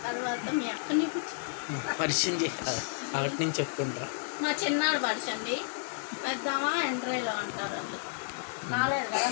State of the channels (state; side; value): silent; right; digital silence